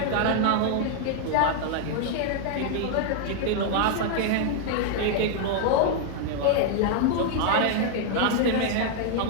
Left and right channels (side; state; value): both; different; correlation 0.00